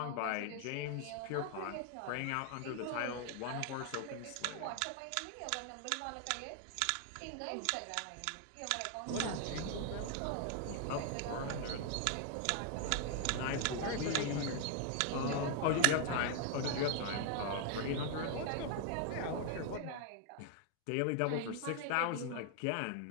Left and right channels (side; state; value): both; different; correlation 0.00